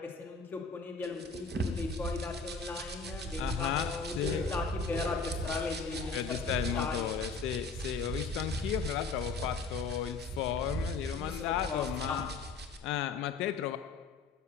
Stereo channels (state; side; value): quieter; right; 4.5 dB